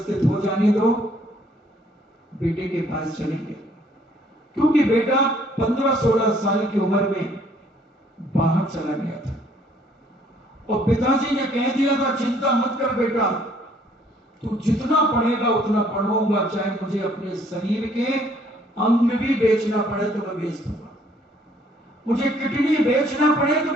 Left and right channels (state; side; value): normal; both; correlation 0.63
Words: हो जाने दो, बेटे के पास चलेंगे। क्योंकि बेटा 15-16 साल की उम्र में बाहर चला गया था और पिताजी ने कह दिया था, चिंता मत कर बेटा, तू जितना पढ़ेगा उतना पढ़ाऊंगा, चाहे मुझे अपने शरीर के अंग भी बेचना पड़े तो मैं बेच दूंगा, मुझे किडनी बेचना पड़े तो